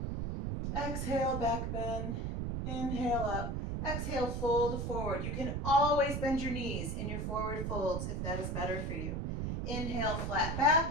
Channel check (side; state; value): right; noise; rumble, 2 dB below the sound